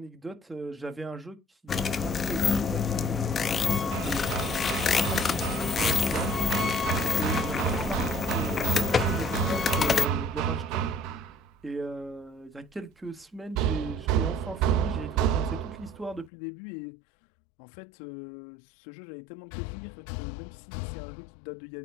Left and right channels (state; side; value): drops out; right; at 16.3 s